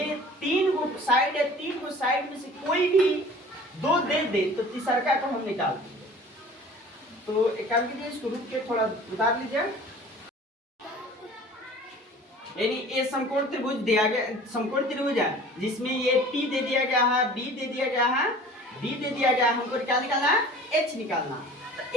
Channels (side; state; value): both; normal; correlation 0.45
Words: 3 गो साइड है, 3 गो साइड में से कोई भी 2 दे दे तो तीसरका को हम निकाल देंगे। तो एक काम कीजिए, इसको रुक के थोड़ा उतार लीजिए। यानी ये समकोण त्रिभुज दिया गया, समकोण त्रिभुज है जिसमें ये P दे दिया गया है, B दे दिया गया है, B दे दिया गया है, हमको क्या निकालना है, H निकालना है। तो